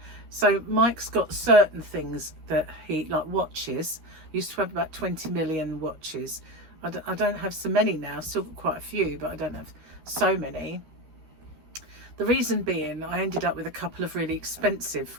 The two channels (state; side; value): late; left; 13 ms